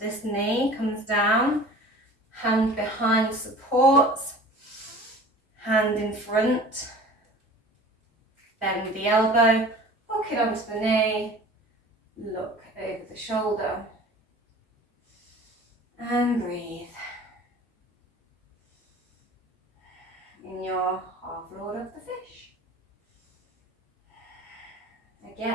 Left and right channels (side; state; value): both; normal; correlation 0.43